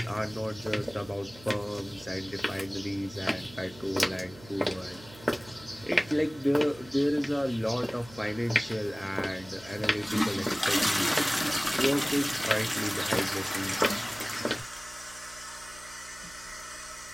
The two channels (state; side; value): noise; right; hum, 20 dB below the sound